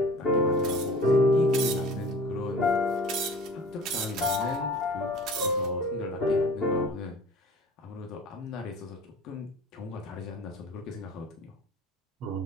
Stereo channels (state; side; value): normal; both; correlation 0.44